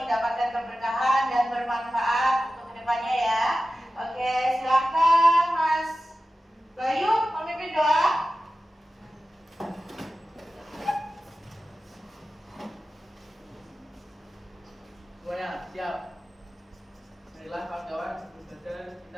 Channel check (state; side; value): normal; both; correlation 0.94